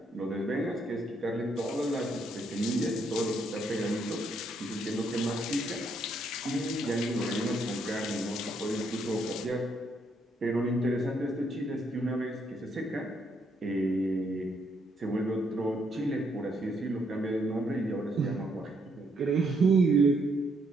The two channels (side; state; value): both; normal; correlation 0.73